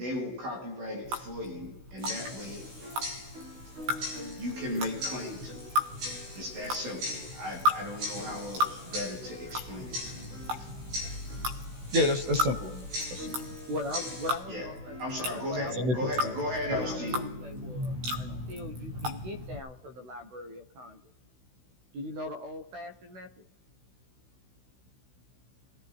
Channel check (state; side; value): late; left; 16 ms